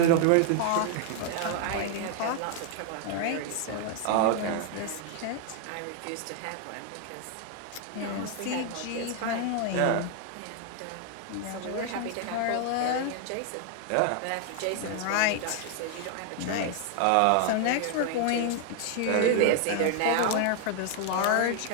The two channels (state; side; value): different; both; correlation 0.00